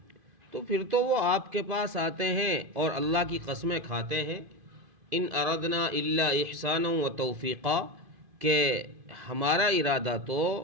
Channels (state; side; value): late; left; 2.5 ms